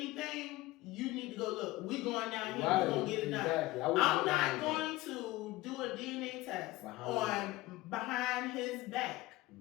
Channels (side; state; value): right; quieter; 19.1 dB